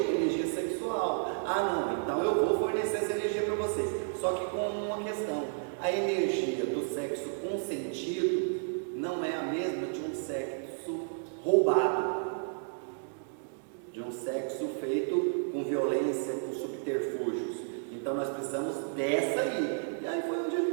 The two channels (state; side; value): silent; left; digital silence